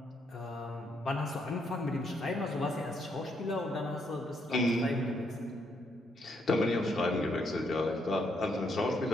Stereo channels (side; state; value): both; normal; correlation 0.75